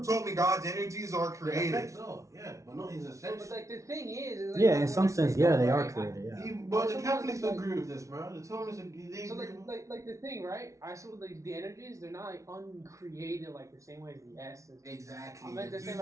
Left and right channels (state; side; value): late; left; 0.15 ms